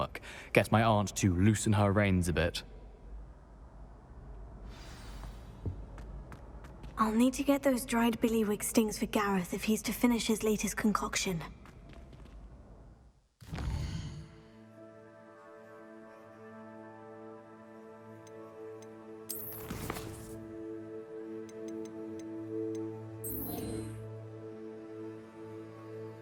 Get my aunt to loosen her reins a bit. I'll need to get those dried billywig stings for Gareth if he's to finish his latest concoction.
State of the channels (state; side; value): identical; both; correlation 1.00